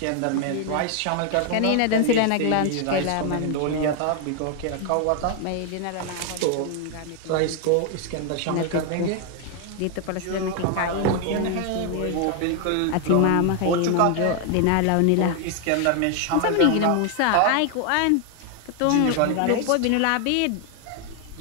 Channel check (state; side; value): different; both; correlation 0.00